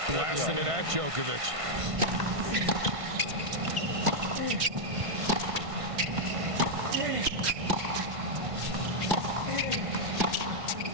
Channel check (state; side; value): late; left; 1.5 ms